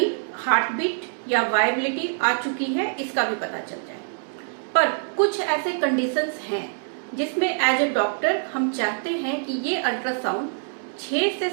हार्ट बीट या वायबिलिटी आ चुकी है इसका भी पता चल जाए। पर कुछ ऐसे कंडीशंस हैं जिसमें एज ए डॉक्टर हम चाहते हैं कि ये अल्ट्रासाउंड 6 से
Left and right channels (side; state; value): left; silent; digital silence